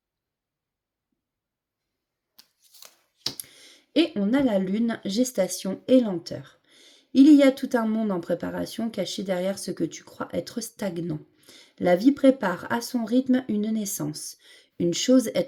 Et on a la lune, gestation et lenteur. Il y a tout un monde en préparation caché derrière ce que tu crois être stagnant. La vie prépare à son rythme une naissance. Une chose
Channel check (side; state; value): both; identical; correlation 1.00